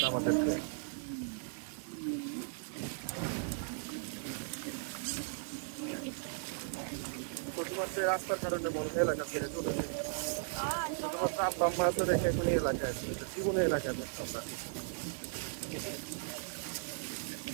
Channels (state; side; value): silent; left; digital silence